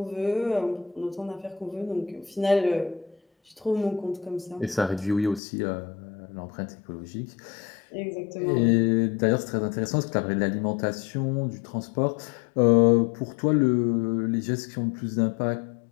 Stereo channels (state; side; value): drops out; right; at 5.4 s